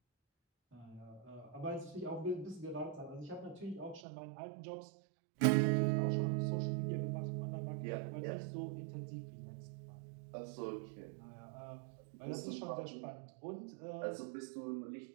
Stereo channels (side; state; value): left; drops out; at 4.0 s